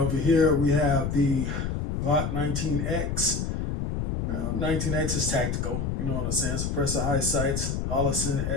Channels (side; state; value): left; noise; rumble, 1 dB below the sound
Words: here we have the Glock 19X. 19X is tactical, you know what I'm saying? Suppressor high sights, Hollison